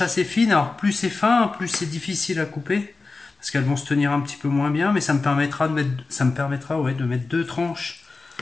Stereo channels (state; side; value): quieter; right; 3.8 dB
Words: assez fines. Alors plus c'est fin, plus c'est difficile à couper. Parce qu'elles vont se tenir un petit peu moins bien. Mais ça me permettra de mettre 2 tranches